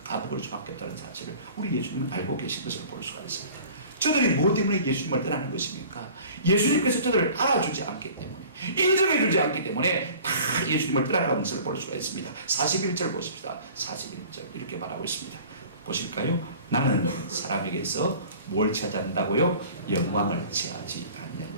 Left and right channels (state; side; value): inverted; both; correlation -0.45